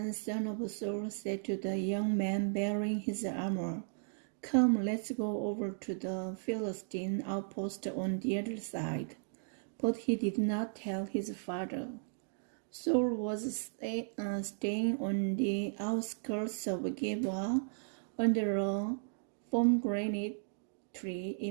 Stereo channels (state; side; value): silent; left; digital silence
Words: son of Saul, said to the young man bearing his armor, "Come, let's go over to the Philistine outpost on the other side." But he did not tell his father. Saul was staying on the outskirts of Gibeah under a pomegranate tree